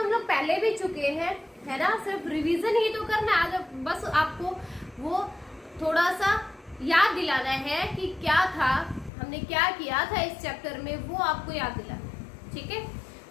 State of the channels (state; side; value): drops out; right; at 9.1 s